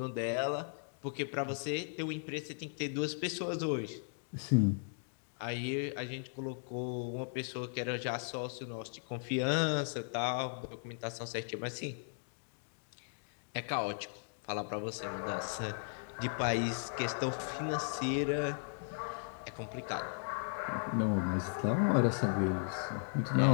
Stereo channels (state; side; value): silent; right; digital silence